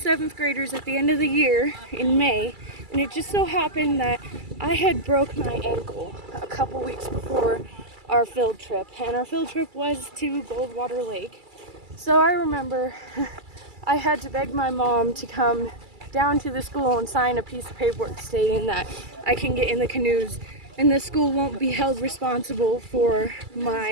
graders at the end of the year in May, and it just so happened that I had broke my ankle a couple weeks before our field trip, and our field trip was to Goldwater Lake. So I remember I had to beg my mom to come down to the school and sign a piece of paperwork stating that I can get in the canoes and the school won't be held responsible for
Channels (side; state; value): left; late; 2.3 ms